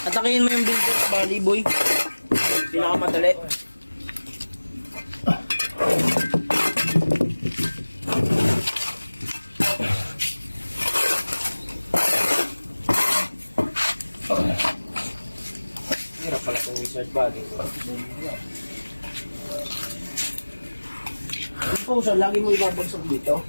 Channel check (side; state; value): both; inverted; correlation -1.00